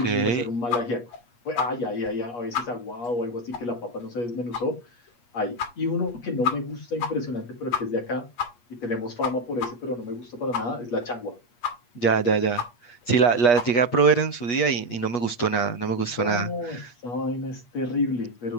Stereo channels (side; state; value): right; late; 8.4 ms